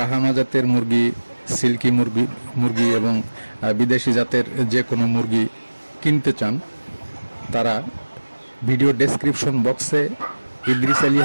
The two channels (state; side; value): inverted; both; correlation -1.00